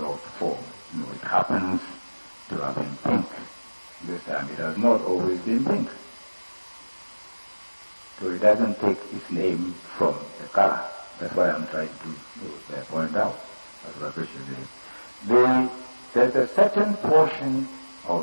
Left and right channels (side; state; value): both; inverted; correlation -1.00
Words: form. It happens to have been pink. This time it has not always been pink. So it doesn't take its name from the color. That's why I'm trying to point out. That's what I appreciate. There's a certain portion